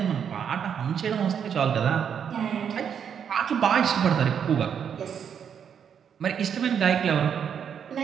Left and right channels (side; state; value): left; quieter; 7.8 dB